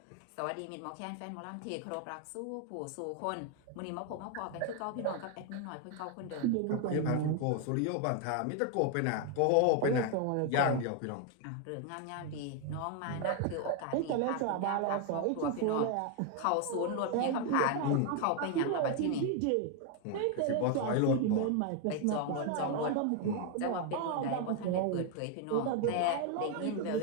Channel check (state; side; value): different; both; correlation 0.01